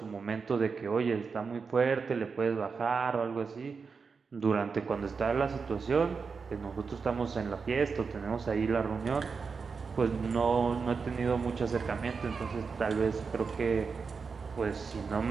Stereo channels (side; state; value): left; quieter; 5.2 dB